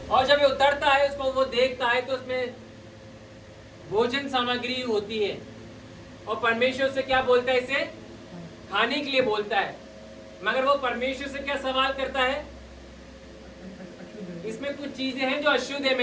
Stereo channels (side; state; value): both; identical; correlation 1.00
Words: और जब ये उतरता है, उसको वो देखता है तो उसमें भोजन सामग्री होती है, और परमेश्वर से क्या बोलता है, इसे खाने के लिए बोलता है। मगर वो परमेश्वर से क्या सवाल करता है, इसमें कुछ चीजें हैं जो अशुद्ध है,